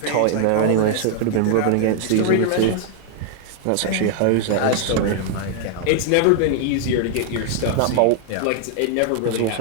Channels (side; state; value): both; different; correlation 0.00